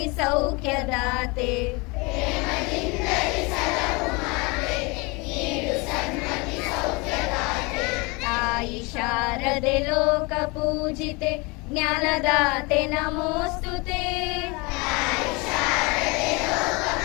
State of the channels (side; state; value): right; quieter; 27.4 dB